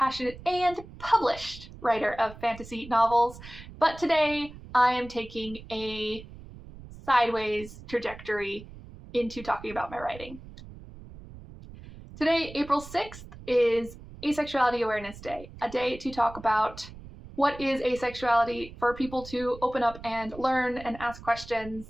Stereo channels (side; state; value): right; noise; rumble, 16 dB below the sound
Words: and published writer of fantasy novels. But today I am taking a sideways trajectory into talking about my writing. Today, April 6th, is Asexuality Awareness Day, a day to talk about what is asexuality, for people to open up and learn and ask questions,